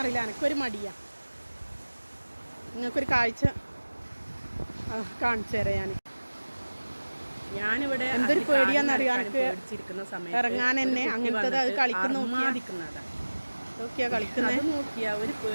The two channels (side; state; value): both; inverted; correlation -1.00